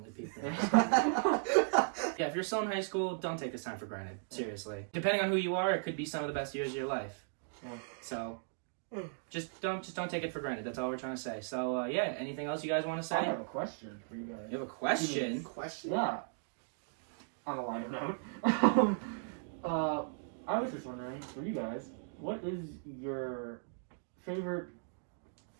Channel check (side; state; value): left; silent; digital silence